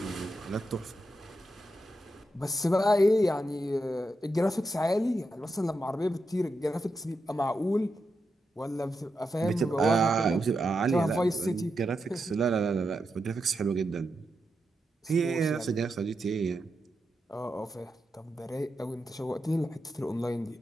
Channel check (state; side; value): normal; both; correlation 0.86